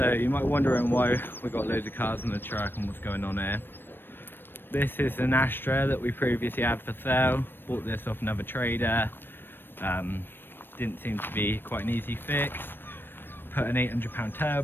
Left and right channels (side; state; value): right; late; 0.097 ms